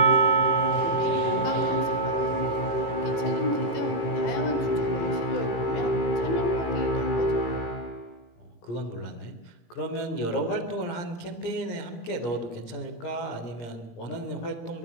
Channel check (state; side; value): late; right; 17 ms